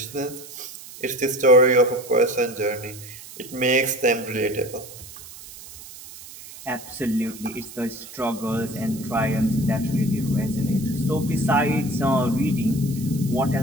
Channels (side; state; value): right; noise; hiss, 16 dB below the sound